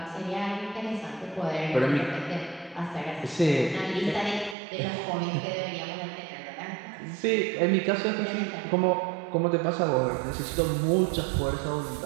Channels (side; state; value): left; drops out; at 4.5 s